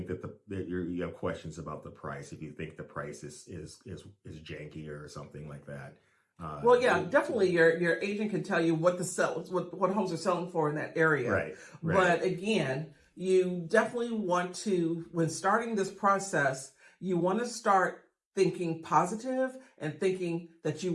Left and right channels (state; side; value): identical; both; correlation 1.00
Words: that you have questions about the price. If you think the price is janky or something like that, Well, yeah, definitely. Your agent can tell you what what homes are selling for in that area. Right. But again, you definitely want to, when starting this process, you want to start thinking positive and thinking that you